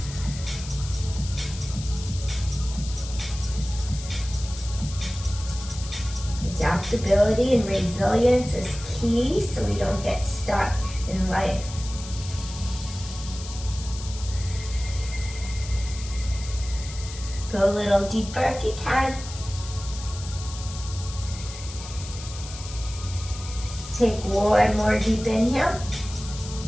Adaptability and resilience is key so we don't get stuck in life. Go a little deeper if you can. Take 1 more deep inhale.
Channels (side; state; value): left; noise; hiss, 13 dB below the sound